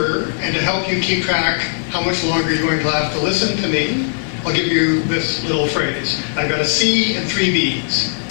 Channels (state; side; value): silent; right; digital silence